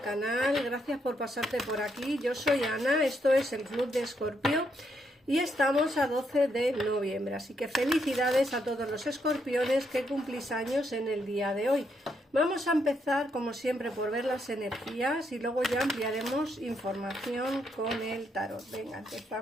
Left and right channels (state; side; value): normal; both; correlation 0.77